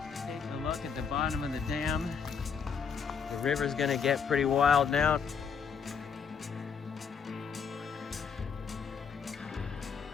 Taking a look at the bottom of the dam. The river's gonna get pretty wild now.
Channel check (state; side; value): quieter; right; 6.4 dB